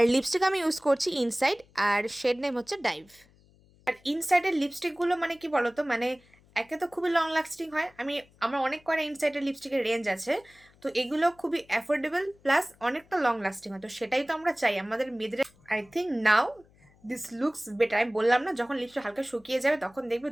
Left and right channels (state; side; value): noise; left; hum, 30 dB below the sound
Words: লিপস্টিক আমি ইউজ করছি ইনসাইড, আর শেড নেম হচ্ছে ডাইভ। আর ইনসাইডের লিপস্টিকগুলো কি বলতো, একে তো খুবই লং লাস্টিং হয়। আমার অনেক কয়টা ইনসাইডের লিপস্টিকের রেঞ্জ আছে, তো এগুলো খুবই অ্যাফোর্ডেবল প্লাস অনেকটা লং লাস্টিং হয়। তো সেটাই তো আমরা চাই আমাদের মেয়েদের। I think now this looks better. আমি বললাম না, যখন লিপস্টিক হালকা শুকিয়ে যাবে তখন দেখবে